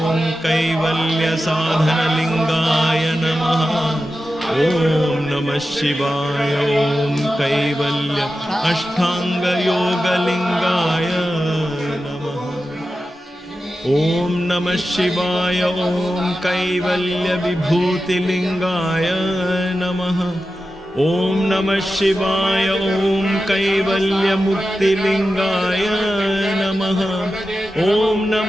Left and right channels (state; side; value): normal; both; correlation 0.92